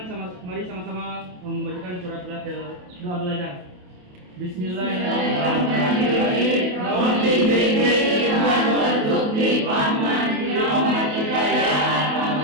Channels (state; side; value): late; left; 28 ms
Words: mari sama-sama membacakan surat doa belajar. Bismillahirrahmanirrahim. Rabbi zidni warzuqni fahman birahmatika ya